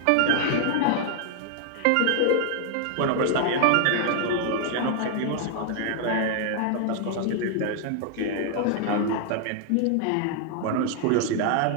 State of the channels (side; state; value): both; different; correlation 0.00